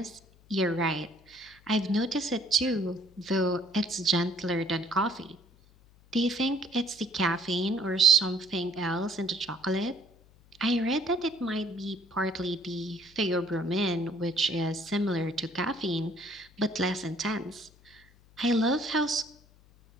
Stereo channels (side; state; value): left; noise; hum, 27 dB below the sound